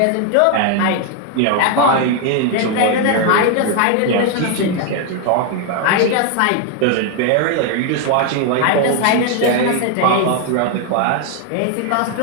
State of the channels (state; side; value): different; both; correlation 0.00